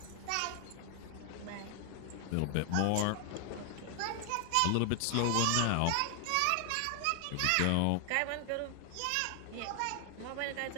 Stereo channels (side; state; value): both; different; correlation 0.00